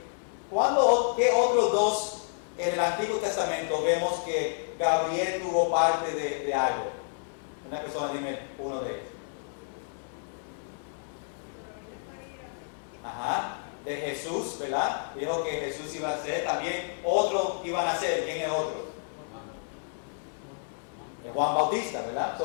¿qué otros dos en el Antiguo Testamento vemos que Gabriel tuvo parte de algo? Una persona, dime uno de ellos. Ajá, de Jesús, ¿verdad? Dijo que Jesús iba a ser, también otro iban a ser. ¿Quién es otro? Juan Bautista, ¿verdad?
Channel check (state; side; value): silent; right; 58 dB below the other